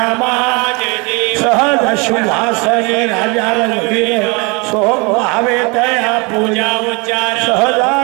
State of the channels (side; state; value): left; quieter; 29.2 dB